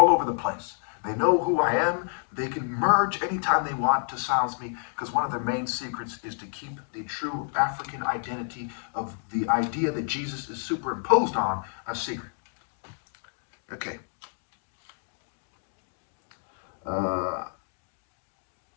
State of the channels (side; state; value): right; silent; 59 dB below the other